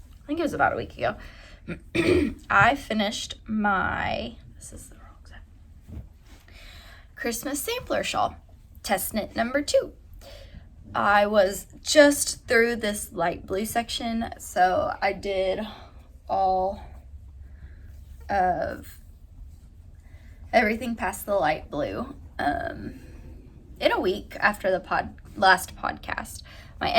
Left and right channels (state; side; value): identical; both; correlation 1.00